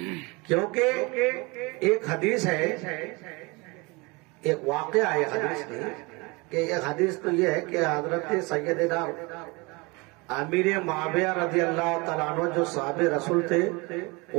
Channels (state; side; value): quieter; left; 26.6 dB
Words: کیونکہ ایک حدیث ہے، ایک واقعہ ہے حدیث میں، کہ ایک حدیث تو یہ ہے کہ حضرت سیدنا امیر معاویہ رضی اللہ تعالیٰ عنہ جو صحابی رسول تھے،